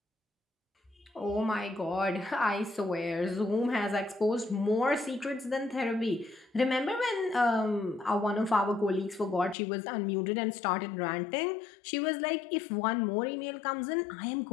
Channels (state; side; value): drops out; right; at 9.6 s